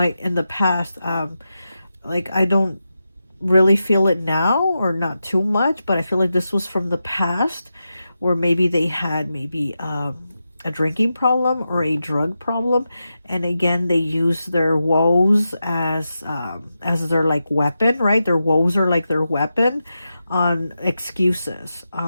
in the past, like I don't really feel it now or not too much, but I feel like this was from the past where maybe they had maybe a drinking problem or a drug problem. And again, they use their woes as their like weapon, right? Their woes are like their weapon on excuses,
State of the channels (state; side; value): inverted; both; correlation -0.89